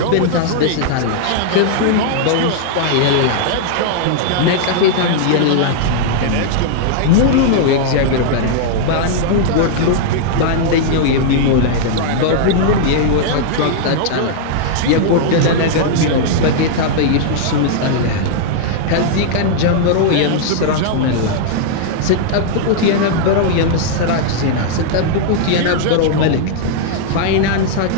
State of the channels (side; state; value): both; different; correlation -0.01